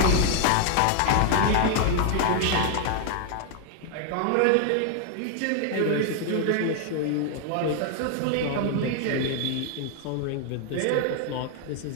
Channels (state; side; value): different; both; correlation 0.00